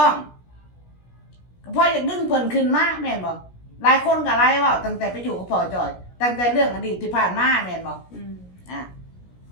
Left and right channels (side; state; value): right; late; 17 ms